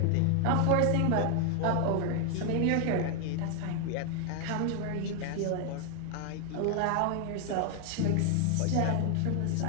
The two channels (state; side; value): different; both; correlation 0.00